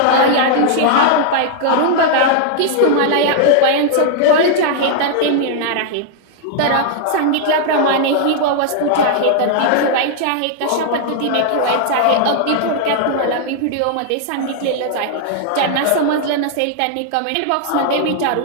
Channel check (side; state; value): both; different; correlation 0.00